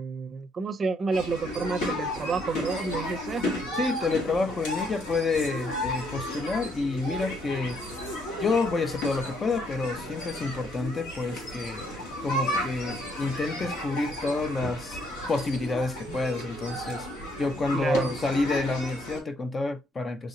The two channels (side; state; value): both; normal; correlation 0.70